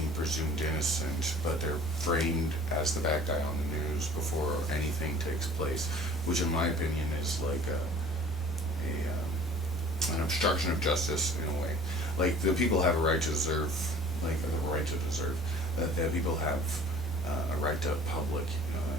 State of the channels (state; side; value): normal; both; correlation 0.48